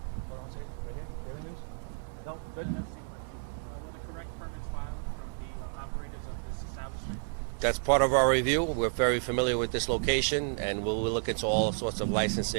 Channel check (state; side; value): silent; left; digital silence